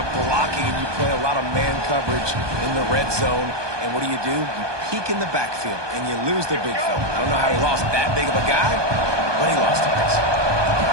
blocking, and you play a lot of man coverage in the red zone. And what do? You peek in the backfield, and you lose the big fella. I don't know how he lost that big of a guy, but he lost it.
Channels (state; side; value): late; left; 1.2 ms